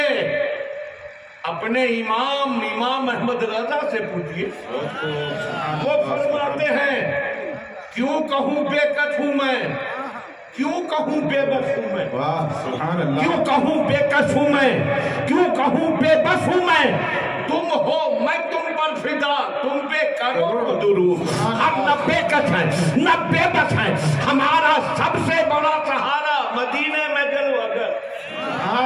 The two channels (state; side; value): identical; both; correlation 1.00